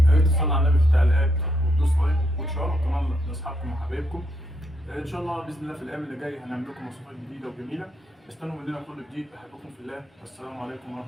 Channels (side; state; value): both; normal; correlation 0.77